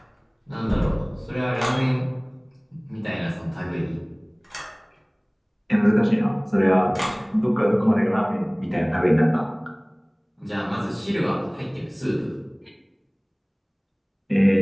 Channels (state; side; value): identical; both; correlation 1.00